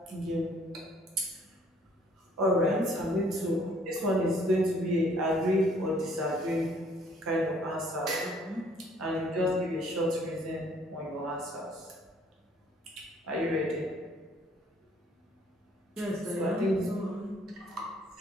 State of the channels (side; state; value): both; normal; correlation 0.61